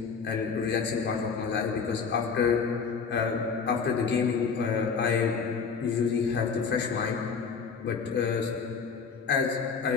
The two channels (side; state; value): right; quieter; 5.7 dB